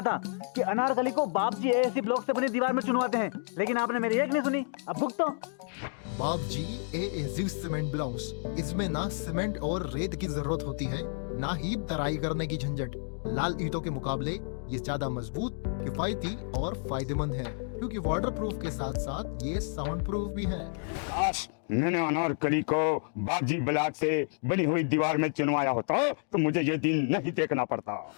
था कि अनारकली को बाप जी एएससी ब्लॉक से बनी दीवार में चुनवाते हैं, लेकिन आपने मेरी एक नहीं सुनी। अब भुगतो। बाप जी एएससी सीमेंट ब्लॉक्स, इसमें ना सीमेंट और रेत की जरूरत होती है, ना ही तराई करने की झंझट। लाल ईंटों के मुकाबले ये ज्यादा मजबूत, किफायती और फायदेमंद है, क्योंकि वाटरप्रूफ के साथ साथ ये साउंड प्रूफ भी है। काश मैंने अनारकली को बापजी ब्लॉक से बनी हुई दीवार में चुनवाया होता तो मुझे ये दिन नहीं देखना पड़ता।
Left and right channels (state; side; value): silent; right; 56 dB below the other